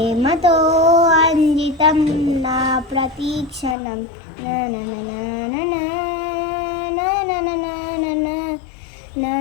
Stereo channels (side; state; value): right; drops out; at 3.8 s